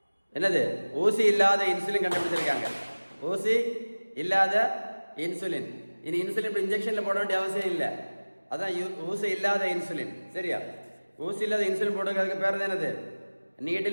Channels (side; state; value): both; inverted; correlation -1.00